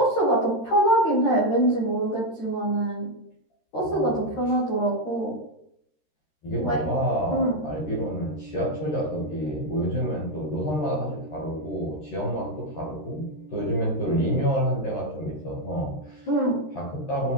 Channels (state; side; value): late; right; 13 ms